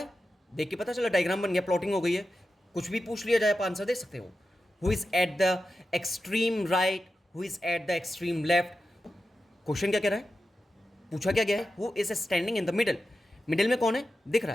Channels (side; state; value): both; normal; correlation 0.91